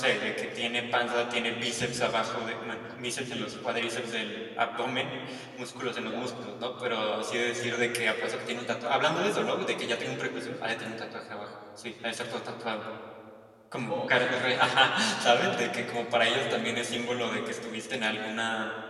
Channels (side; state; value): both; identical; correlation 1.00